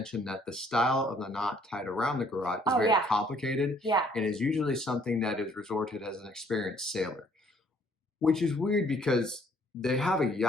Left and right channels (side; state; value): both; normal; correlation 0.63